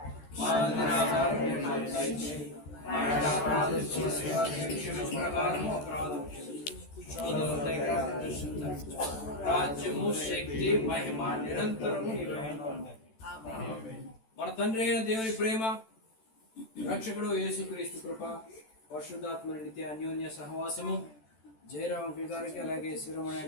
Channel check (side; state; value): right; late; 13 ms